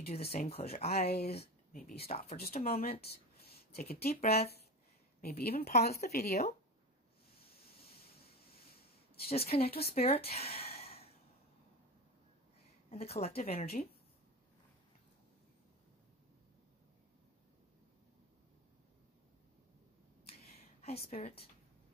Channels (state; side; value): normal; both; correlation 0.23